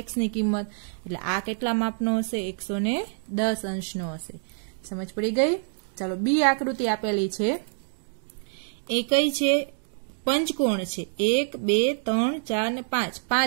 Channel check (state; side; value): silent; left; digital silence